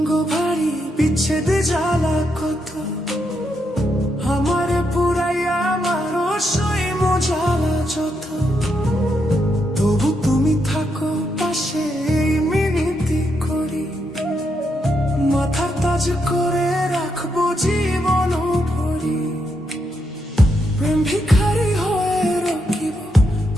ভারী, বিচ্ছেদে জ্বালা কত, আমারে পুরাইয়া আমার সই মজালা যত, তবু তুমি থাকো পাশে এই মিনতি করি, মাথার তাজ করে রাখবো জীবন ভরি। প্রেম ভিখারি হয়ে রকিব,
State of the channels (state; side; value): normal; both; correlation 0.80